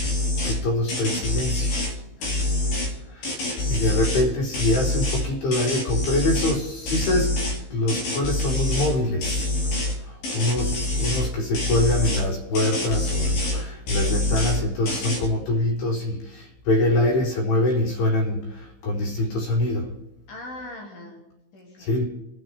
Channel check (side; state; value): right; late; 15 ms